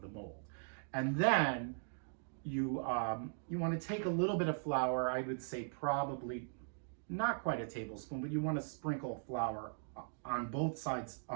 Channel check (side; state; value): left; silent; digital silence